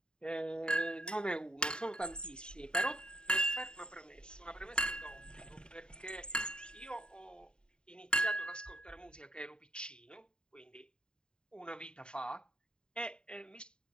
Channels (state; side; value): late; right; 0.049 ms